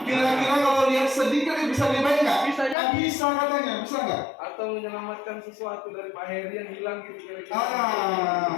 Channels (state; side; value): drops out; right; at 2.8 s